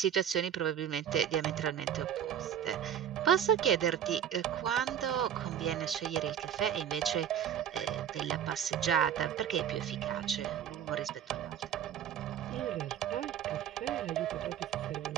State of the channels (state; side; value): quieter; left; 9.5 dB